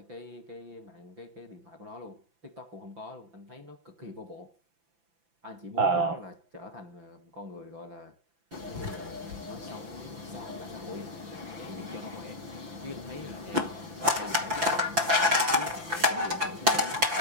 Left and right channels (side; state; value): left; late; 5.9 ms